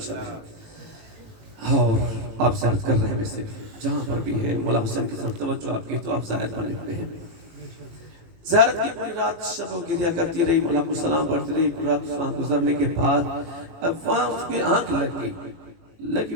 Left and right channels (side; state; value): left; late; 18 ms